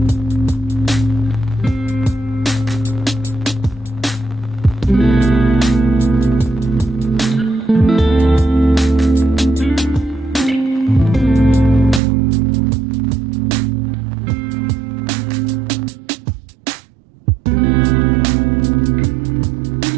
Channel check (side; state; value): left; drops out; at 12.0 s